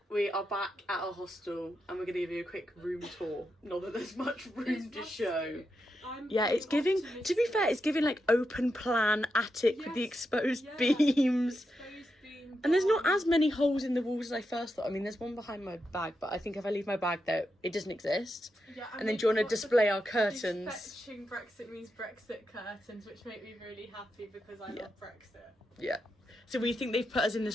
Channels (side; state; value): both; normal; correlation 0.86